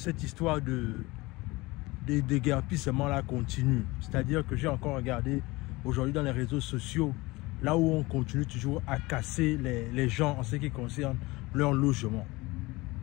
histoire de déguerpissement là continue. C'est-à-dire que j'ai encore regardé aujourd'hui dans les réseaux sociaux, là où on continue toujours à casser les gens en ce qui concerne leur logement.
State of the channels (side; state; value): right; quieter; 21.9 dB